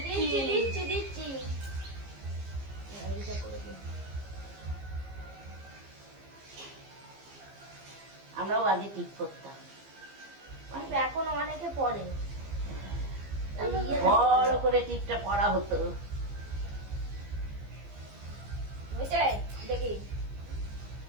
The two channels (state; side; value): late; left; 15 ms